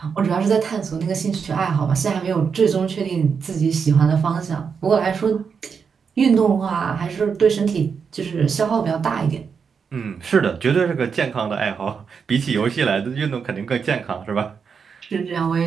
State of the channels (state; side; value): quieter; left; 6.1 dB